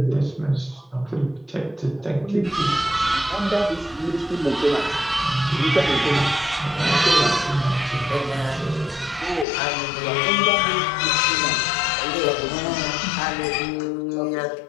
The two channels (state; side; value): drops out; right; at 9.5 s